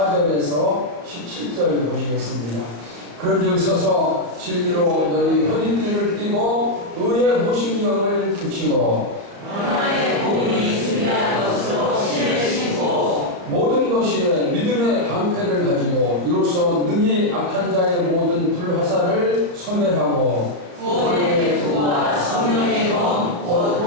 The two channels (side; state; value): left; late; 34 ms